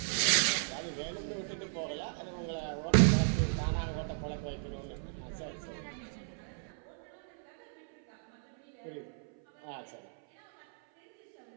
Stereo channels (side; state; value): left; silent; 54 dB below the other